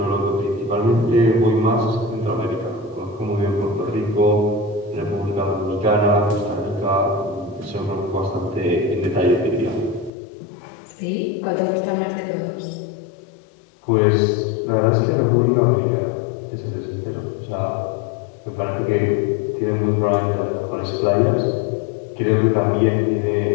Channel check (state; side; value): drops out; right; at 10.1 s